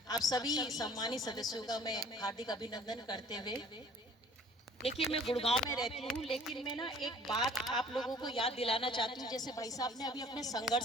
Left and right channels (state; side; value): normal; both; correlation 0.51